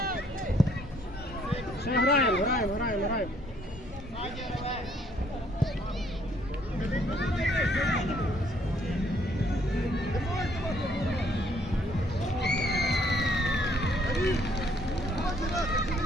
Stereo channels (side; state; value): both; normal; correlation 0.65